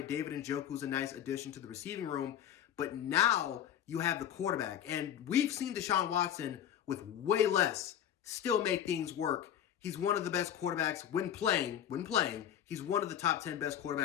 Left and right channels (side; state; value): right; quieter; 10.2 dB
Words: David Njoku's a nice addition to the receiving room. But now you have the quarterback. And we've seen Deshaun Watson with way less still make things work. He's one of the best quarterbacks when playing. He's one of the top 10 best